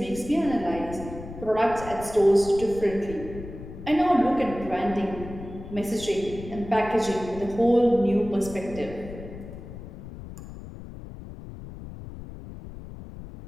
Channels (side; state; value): left; noise; rumble, 13 dB below the sound